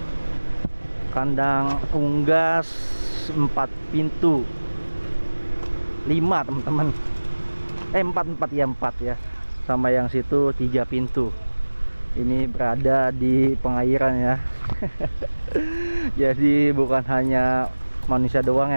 Kandang unggas 4 pintu 5 teman-teman, 4 ya, sama yang situ 3 pintu. Ini berada di pengairan ya. Jadi bukan hanya manusia doang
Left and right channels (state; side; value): inverted; both; correlation -1.00